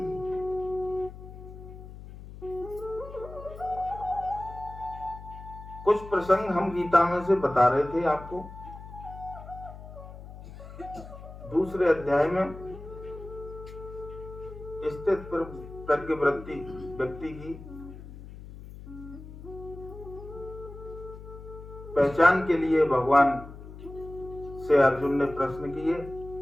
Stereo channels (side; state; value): left; noise; hum, 14 dB below the sound